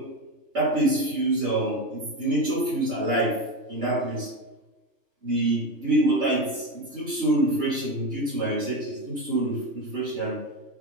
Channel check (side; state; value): left; late; 3.0 ms